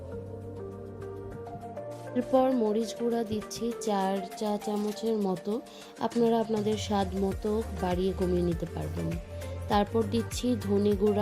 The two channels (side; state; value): both; identical; correlation 1.00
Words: এরপর মরিচ গুঁড়া দিচ্ছি 4 চা চামচের মতো, আপনারা আপনাদের স্বাদ মতো বাড়িয়ে কমিয়ে নিতে পারবেন। তারপর দিচ্ছি ধনে